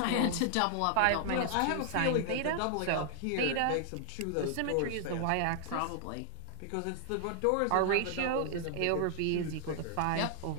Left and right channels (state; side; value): different; both; correlation 0.00